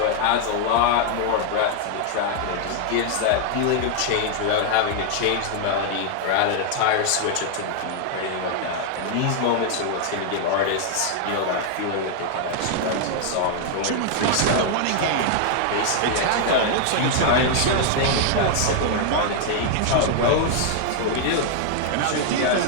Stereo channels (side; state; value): both; different; correlation 0.00